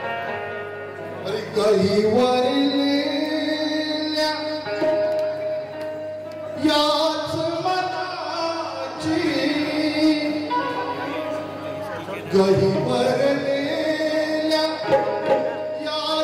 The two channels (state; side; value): identical; both; correlation 1.00